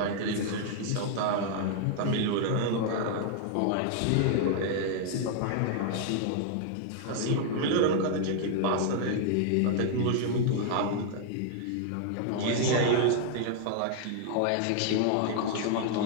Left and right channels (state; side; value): different; both; correlation 0.00